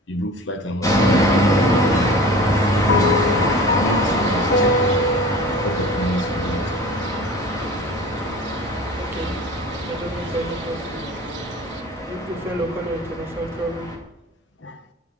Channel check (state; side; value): normal; both; correlation 0.40